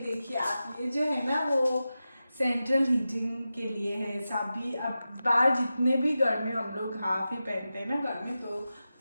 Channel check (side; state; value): both; inverted; correlation -0.93